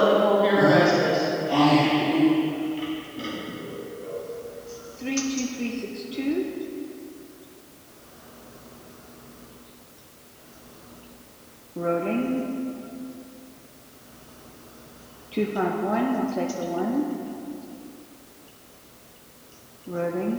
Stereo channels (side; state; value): both; identical; correlation 1.00